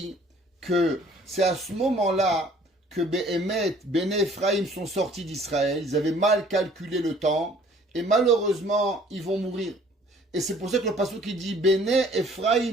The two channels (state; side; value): normal; both; correlation 0.55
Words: que c'est à ce moment-là que Béné Ephraïm sont sortis d'Israël. Ils avaient mal calculé le temps et malheureusement, ils vont mourir. Et c'est pour ça que le passage qui dit Béné